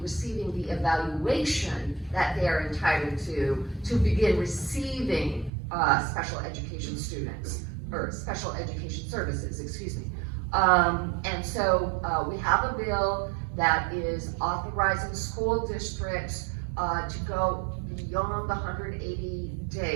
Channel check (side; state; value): left; drops out; at 5.5 s